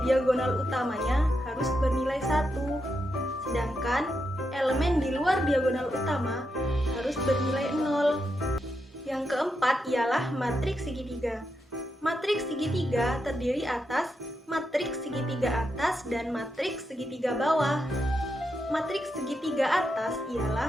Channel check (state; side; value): normal; both; correlation 0.84